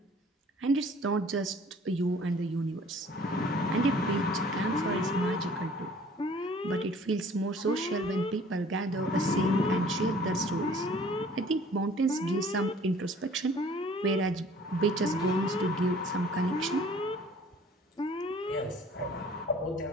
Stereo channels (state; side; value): normal; both; correlation 0.52